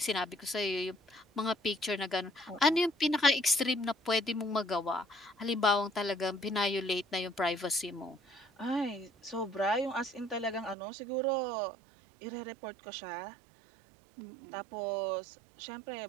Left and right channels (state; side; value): drops out; left; at 10.8 s